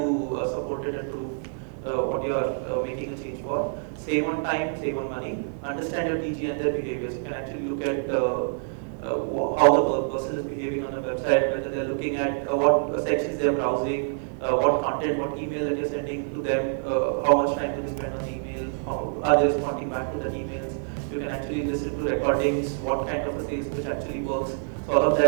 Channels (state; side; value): silent; left; 55 dB below the other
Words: support it and prove what you are making a change for. Save on time, save on money. Understand your TG and their behaviors. You can actually look at how the person is behaving on a website, whether they're looking at what sections they're browsing, what content, what email that you're sending to them, how much time do they spend on the email, how are they responding back to that emails. You can actually listen to recordings, what kind of a sales pitch actually works. So all of